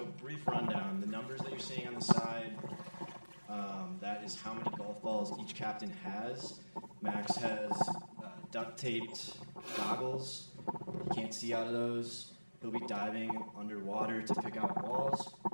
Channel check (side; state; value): both; inverted; correlation -1.00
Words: brief rundown. The numbers that you're seeing on the side, that is how many golf balls each captain has. Max has duct taped goggles. He can't see out of those. He'll be diving underwater to pick out balls.